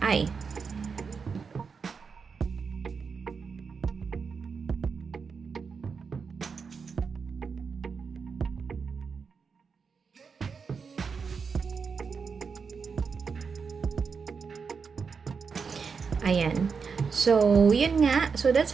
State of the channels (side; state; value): left; quieter; 5.6 dB